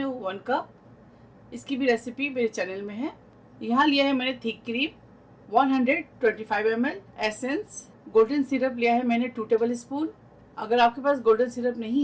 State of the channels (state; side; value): identical; both; correlation 1.00